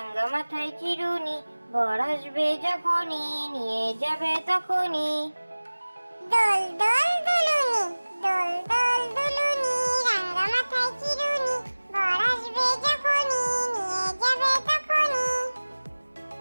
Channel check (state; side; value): inverted; both; correlation -1.00